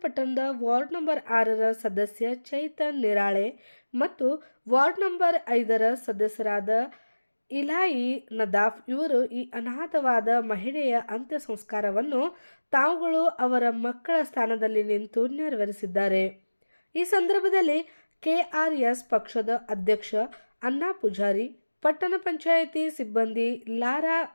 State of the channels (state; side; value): inverted; both; correlation -1.00